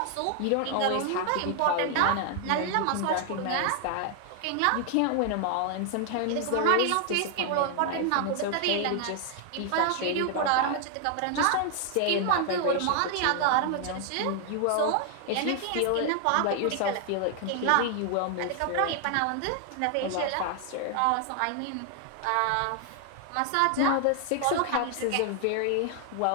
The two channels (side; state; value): both; different; correlation 0.00